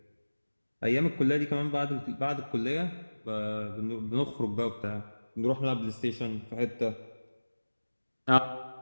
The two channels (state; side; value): inverted; both; correlation -1.00